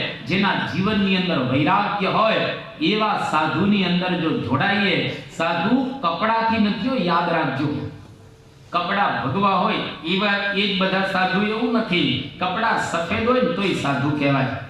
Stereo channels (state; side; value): identical; both; correlation 1.00